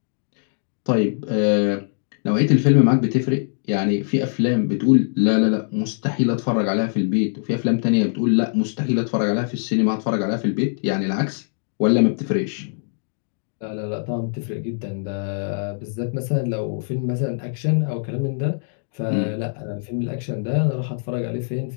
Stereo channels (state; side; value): silent; right; digital silence